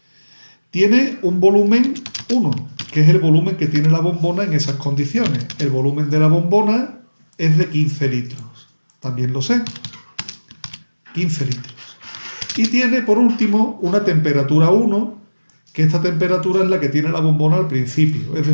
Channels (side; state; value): both; inverted; correlation -1.00